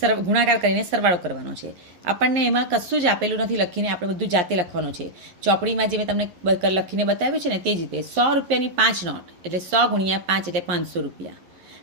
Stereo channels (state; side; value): late; left; 11 ms